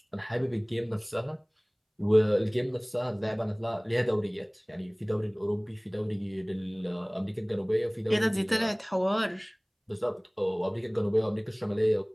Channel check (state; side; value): identical; both; correlation 1.00